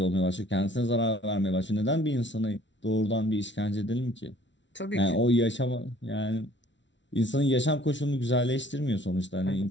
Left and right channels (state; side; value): late; right; 0.53 ms